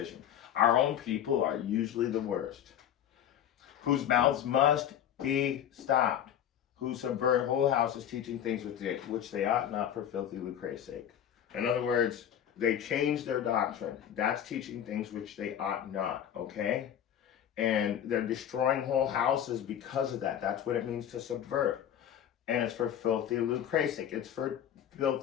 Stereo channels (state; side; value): quieter; right; 10.0 dB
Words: Our own people are usually the worst, whose mouths must be stopped, who subvert whole houses, teaching things which they ought not, for filthy lucre's sake. In other words, they change their doctrine. That's teaching things which they ought not, okay? And they're destroying whole houses because of that. That's what it means to subvert. And it's for filthy lucre's sake. It's for